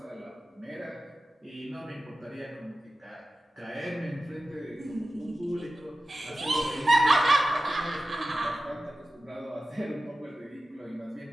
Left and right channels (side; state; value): both; normal; correlation 0.94